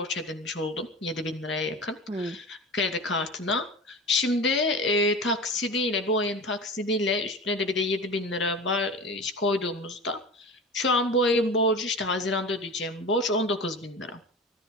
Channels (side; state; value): both; normal; correlation 0.31